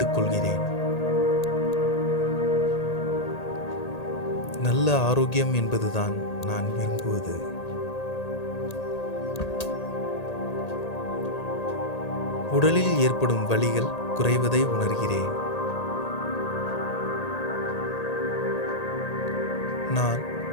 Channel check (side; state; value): right; late; 1.8 ms